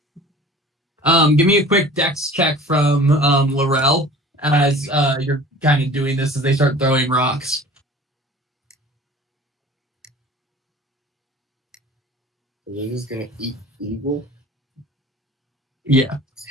Give me a quick dex check from Laurel as you're kind of doing this as they start throwing rocks. They're just gonna eat eagle. Yeah.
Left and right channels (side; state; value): both; normal; correlation 0.44